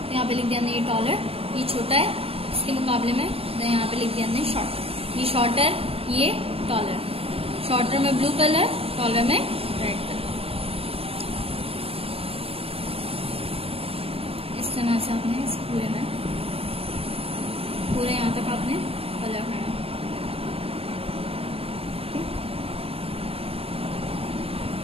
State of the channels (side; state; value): left; late; 0.28 ms